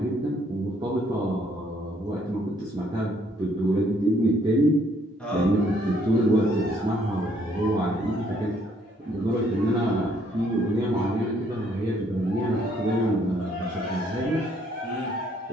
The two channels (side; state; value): both; normal; correlation 0.66